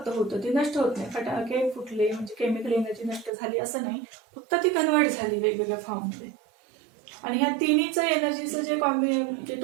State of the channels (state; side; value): drops out; left; at 3.3 s